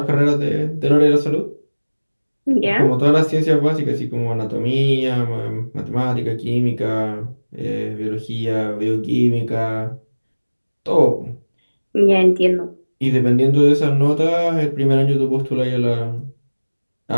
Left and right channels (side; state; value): both; inverted; correlation -1.00